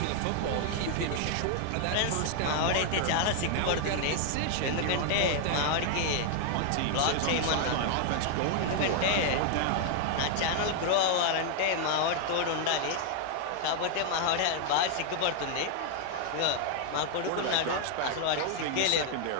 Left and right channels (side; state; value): both; different; correlation 0.00